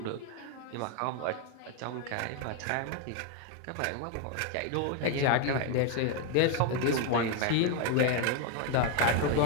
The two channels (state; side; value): different; both; correlation 0.01